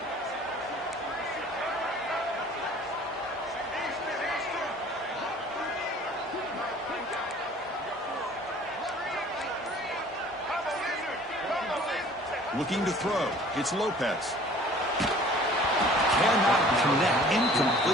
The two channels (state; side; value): normal; both; correlation 0.50